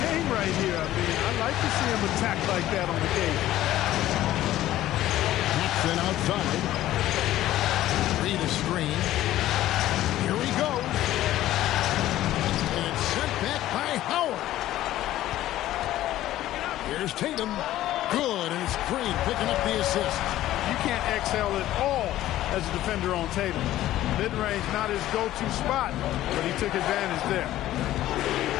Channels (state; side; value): quieter; right; 14.2 dB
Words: game right here. I mean, I like to see him attack like that on the game. Paxson outside. Reed a screen. Here he goes. And it's sent back by Howard. Here's Tatum. Good, and it's Green picking up the assist. You can't exhale at all as a defender on Tatum. Mid-range, not his go-to spot, but he took advantage there.